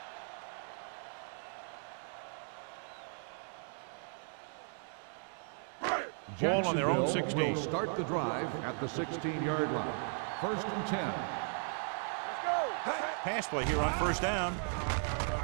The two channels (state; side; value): silent; left; 53 dB below the other